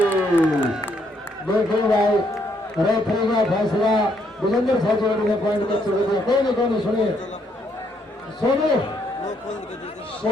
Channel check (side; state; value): both; normal; correlation 0.72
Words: देखो भाई रेफरी का फैसला विजेंद्र साहब ने पॉइंट कर चुके थे। कोई नहीं सुनिए